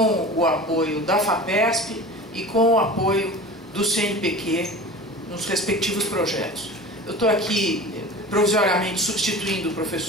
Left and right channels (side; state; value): both; normal; correlation 0.36